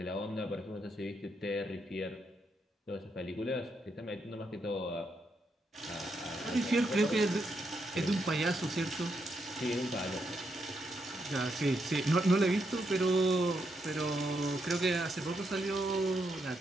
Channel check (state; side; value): normal; both; correlation 0.80